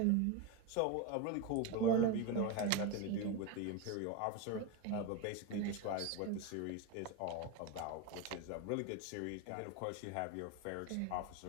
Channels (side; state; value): both; different; correlation 0.04